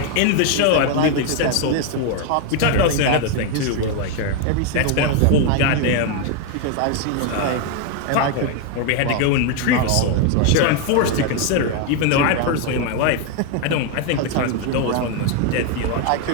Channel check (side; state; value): both; different; correlation 0.01